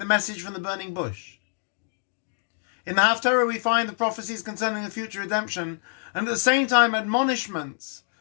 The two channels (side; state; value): right; silent; digital silence